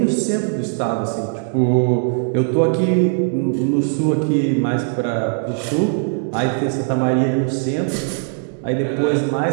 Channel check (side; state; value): left; silent; 56 dB below the other